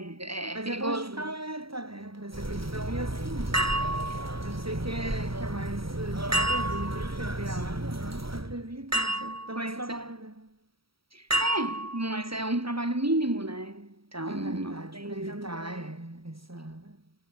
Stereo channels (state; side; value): late; left; 0.75 ms